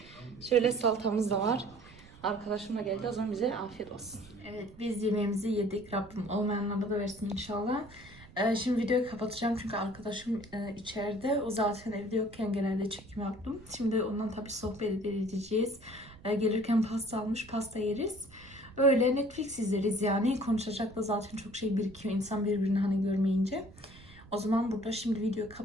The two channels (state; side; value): noise; right; rumble, 21 dB below the sound